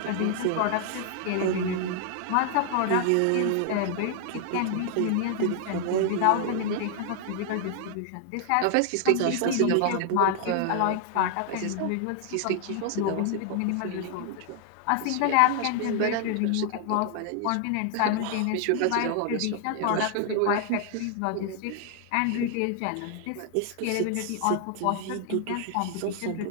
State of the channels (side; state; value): both; different; correlation 0.00